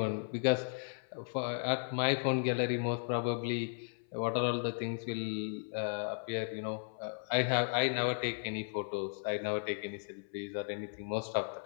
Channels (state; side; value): silent; right; 54 dB below the other